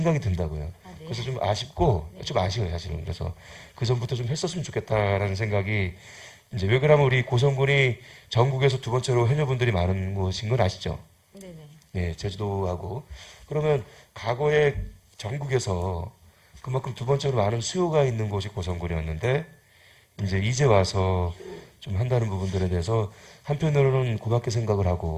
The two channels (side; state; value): both; identical; correlation 1.00